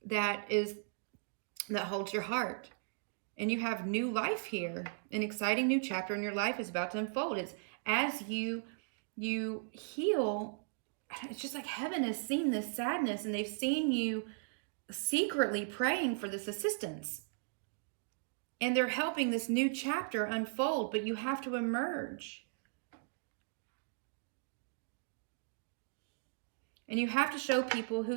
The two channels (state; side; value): silent; left; digital silence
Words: that holds your heart. And you have new life here. An exciting new chapter in your life is about to unfold. It's as you heal, it's just like heaven has seen this sadness and they've seen you secretly praying for this assistance. And they're helping this new chapter unfold, but you have to emerge. And you have to show people who